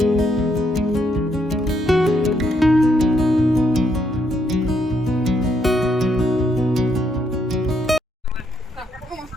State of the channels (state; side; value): normal; both; correlation 0.75